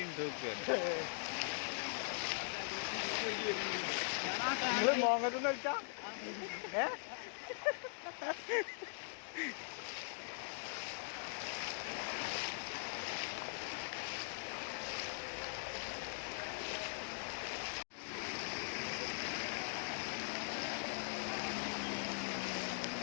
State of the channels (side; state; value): right; silent; digital silence